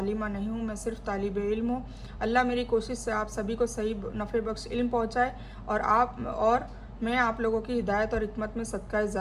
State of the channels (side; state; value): both; identical; correlation 1.00